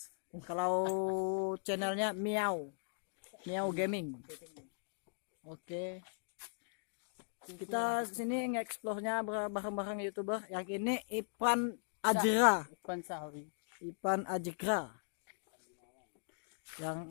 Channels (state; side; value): silent; right; digital silence